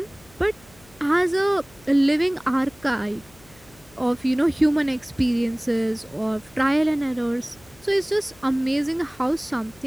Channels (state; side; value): noise; left; hum, 26 dB below the sound